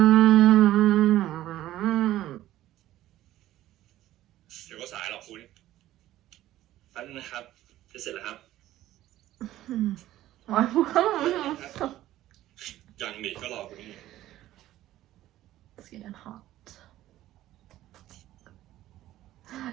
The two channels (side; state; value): left; quieter; 14.3 dB